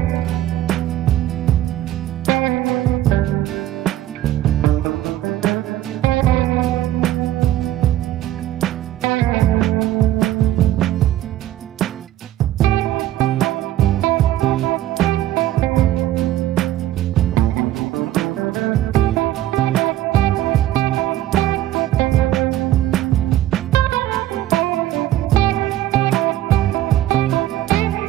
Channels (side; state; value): left; quieter; 13.6 dB